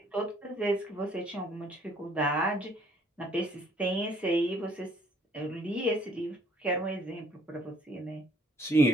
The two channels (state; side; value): normal; both; correlation 0.62